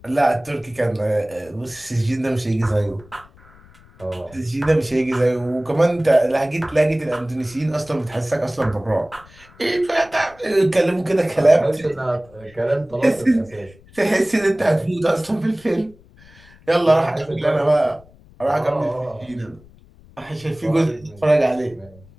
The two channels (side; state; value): left; noise; rumble, 25 dB below the sound